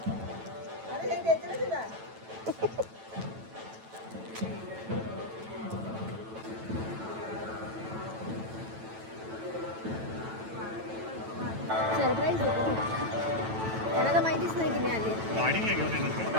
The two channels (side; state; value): left; late; 9.0 ms